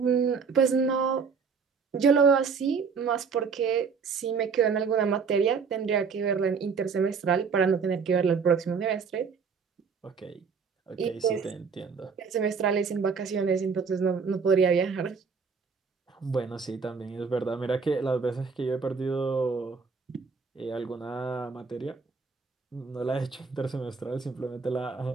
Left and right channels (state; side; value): quieter; left; 5.5 dB